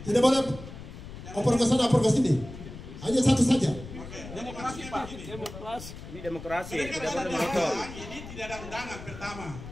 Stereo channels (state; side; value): noise; left; rumble, 13 dB below the sound